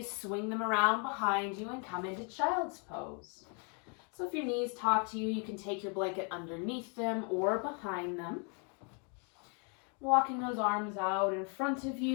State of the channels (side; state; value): right; quieter; 37.0 dB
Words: swing them around behind you and come into child's pose. So if your knees talk to you, you can take your blanket underneath them or behind them. Walking those arms out in front of